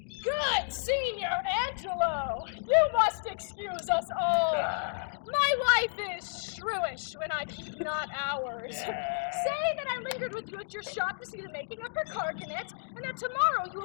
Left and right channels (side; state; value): right; silent; digital silence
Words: Good Senior Angelo, you must excuse us all. My wife is shrewish when I keep not hours. Say that I lingered with you at your shop to see the making of her carcanet, and that tomorrow you